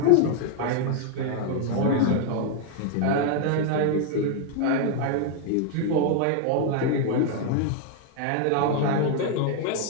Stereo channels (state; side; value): different; both; correlation 0.00